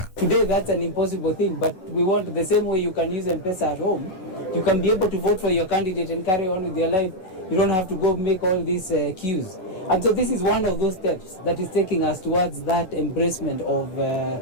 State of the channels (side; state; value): right; late; 11 ms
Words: Today that's an impossible thing, but we want the same way you can use M-Pesa at home. You can be able to vote for your candidate and carry on with your life. You don't have to go make all these queues. And so this is one of those steps that is taking us towards that embracement of